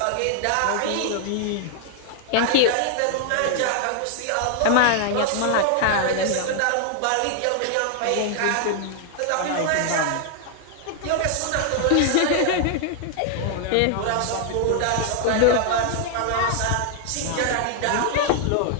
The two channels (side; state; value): both; different; correlation 0.00